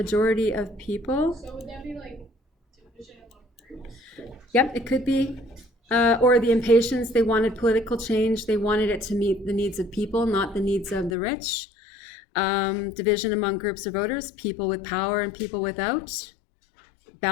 of people. so would that be like division among groups? Yep, it could be. Or the impatience, they wanted political change. They wanted it to meet the needs of people, not the needs of the rich. Division among groups of voters, people with power and people without.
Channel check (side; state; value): right; drops out; at 11.1 s